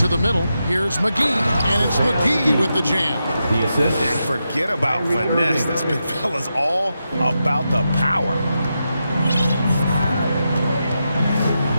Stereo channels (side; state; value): both; inverted; correlation -0.87